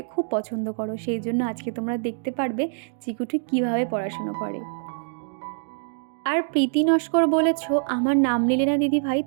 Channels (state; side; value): silent; left; digital silence